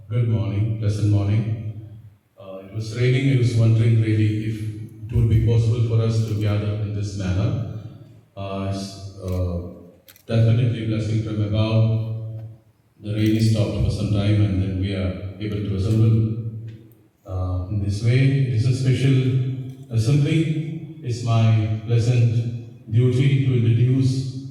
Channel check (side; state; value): both; identical; correlation 1.00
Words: good morning, pleasant morning. It was raining. I was wondering really if it would be possible for us to gather in this manner. It's definitely blessing from above. The rain is stopped for some time and then we are able to assemble in this way. It is a special assembly. It's my pleasant duty to introduce